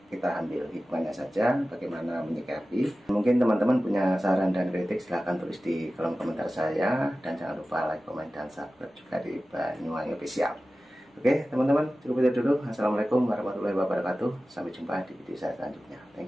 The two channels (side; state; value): both; normal; correlation 0.95